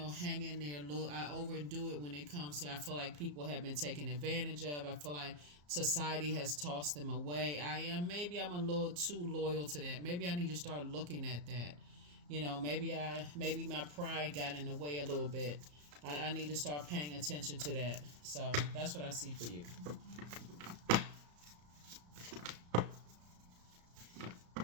in there a little. I overdo it when it comes to, I feel like people have been taken advantage of. I feel like society has tossed them away. Maybe I'm a little too loyal to that. Maybe I need to start looking at that. Maybe my pride got in the way a little bit. I need to start paying attention to that. So that's what I see for you.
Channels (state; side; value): late; left; 34 ms